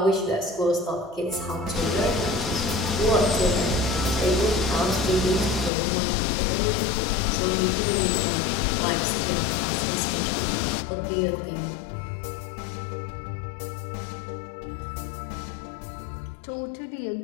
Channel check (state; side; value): drops out; right; at 5.7 s